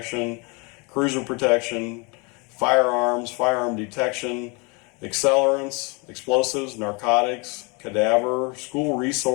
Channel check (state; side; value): quieter; right; 30.4 dB